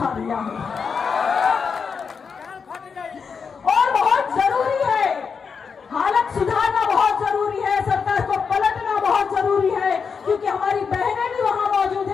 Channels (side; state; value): right; quieter; 5.8 dB